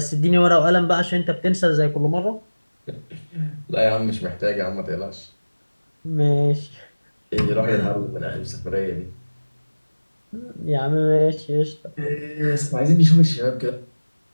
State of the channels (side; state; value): both; inverted; correlation -1.00